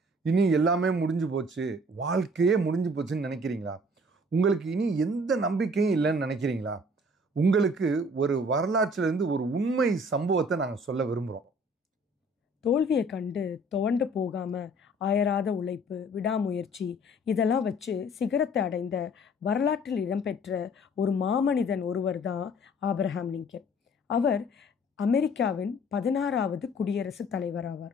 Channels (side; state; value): both; normal; correlation 0.54